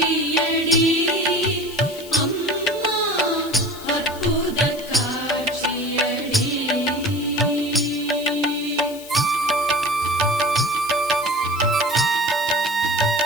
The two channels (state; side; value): noise; left; hiss, 17 dB below the sound